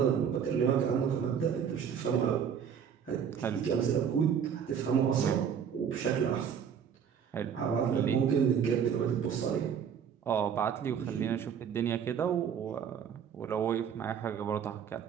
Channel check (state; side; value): quieter; left; 7.7 dB